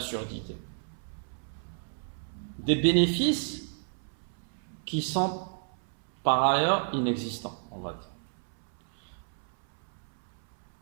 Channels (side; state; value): left; silent; 57 dB below the other